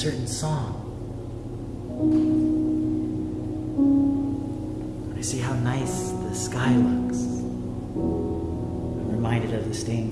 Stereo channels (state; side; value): identical; both; correlation 1.00